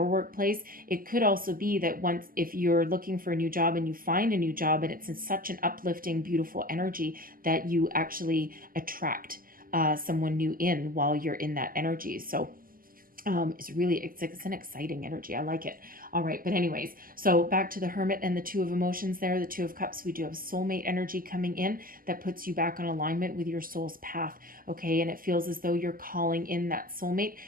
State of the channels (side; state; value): left; late; 0.42 ms